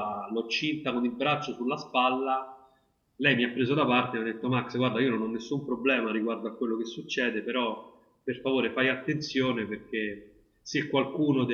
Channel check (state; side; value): identical; both; correlation 1.00